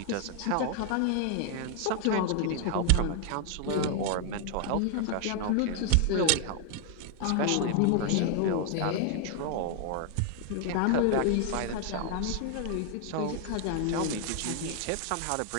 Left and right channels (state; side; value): different; both; correlation 0.00